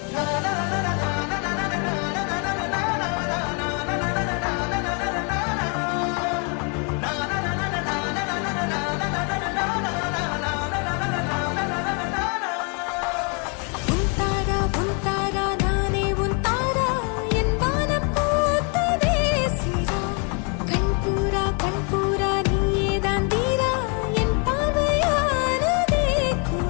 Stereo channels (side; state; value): right; quieter; 36.9 dB